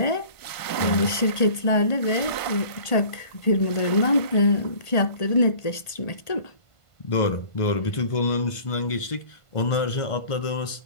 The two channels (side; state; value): right; late; 1.5 ms